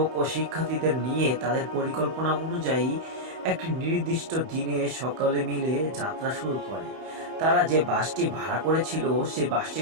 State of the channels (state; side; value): late; left; 31 ms